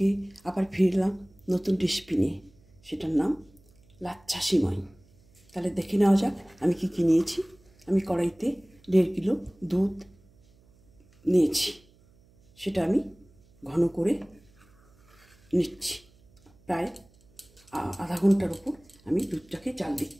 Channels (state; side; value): noise; right; hum, 30 dB below the sound